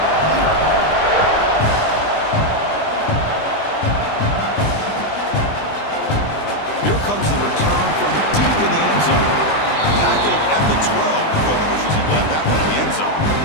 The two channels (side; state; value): right; late; 20 ms